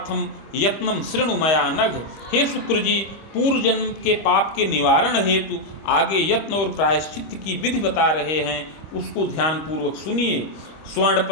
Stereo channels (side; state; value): right; late; 25 ms